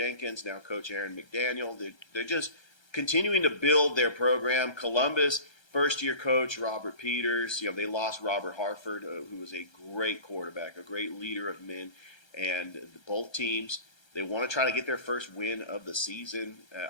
now Coach Aaron McDaniel. They're just continuing to build their program. Columbus, first-year coach Robert Peters. They lost Robert Harford, who was a great quarterback, a great leader of men. And both teams, they want to try to get their first win of the season.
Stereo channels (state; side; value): late; right; 1.3 ms